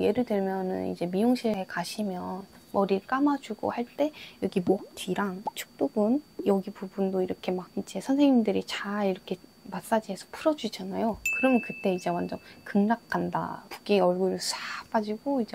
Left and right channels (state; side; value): identical; both; correlation 1.00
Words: 예를 들면은 이제 미용실에 가시면 머리를 감아주고 할 때 여기 목 뒤랑 축두근 여기 부분도 이렇게 막 이제 선생님들이 잘 이렇게 마사지해서 풀어주잖아요. 그러면 그때 이제 완전 극락간다. 붓기 얼굴 싹 빠지고